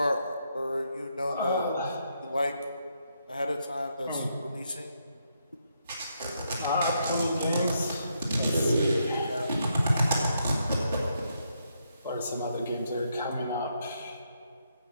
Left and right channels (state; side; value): inverted; both; correlation -0.78